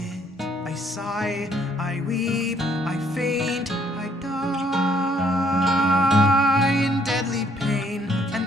I sigh, I weep, I faint, I die in deadly pain and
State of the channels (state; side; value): normal; both; correlation 0.65